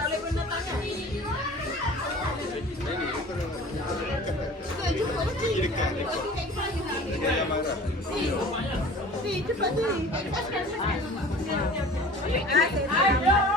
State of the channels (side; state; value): both; normal; correlation 0.43